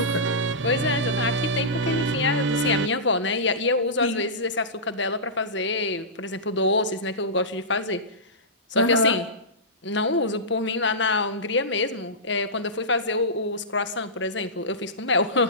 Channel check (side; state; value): both; normal; correlation -0.18